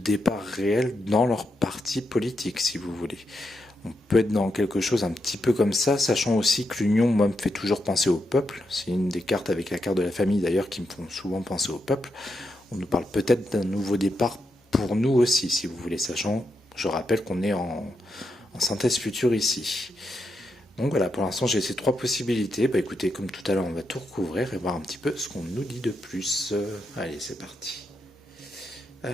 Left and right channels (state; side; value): normal; both; correlation 0.84